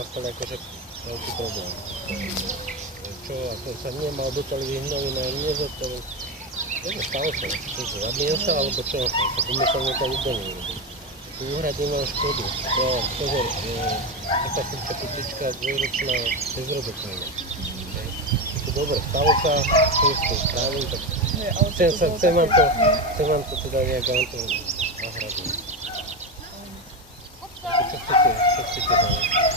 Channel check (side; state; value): both; normal; correlation 0.15